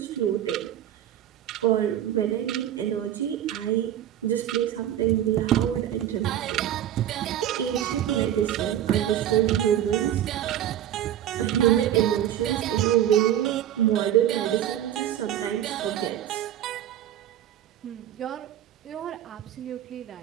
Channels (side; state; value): left; quieter; 11.4 dB